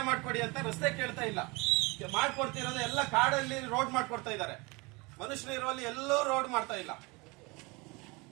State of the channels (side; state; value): left; quieter; 26.3 dB